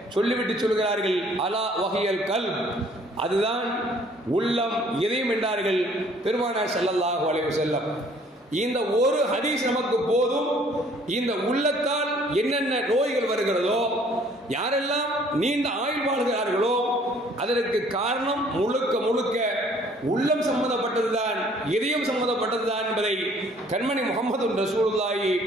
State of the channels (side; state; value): both; normal; correlation 0.58